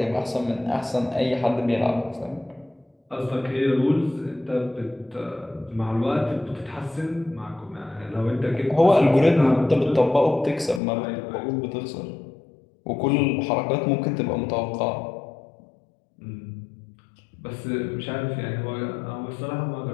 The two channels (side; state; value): right; drops out; at 10.8 s